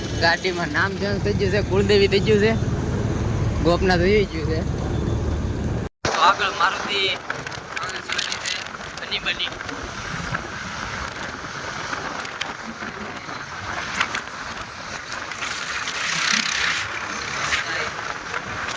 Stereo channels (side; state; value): both; identical; correlation 1.00